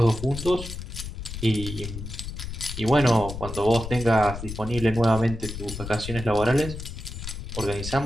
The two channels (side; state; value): left; noise; rumble, 8 dB below the sound